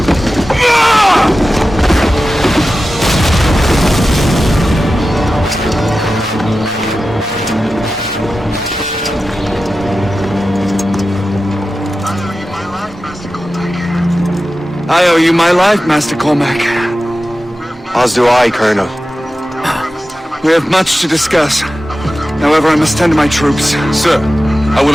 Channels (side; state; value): both; normal; correlation 0.94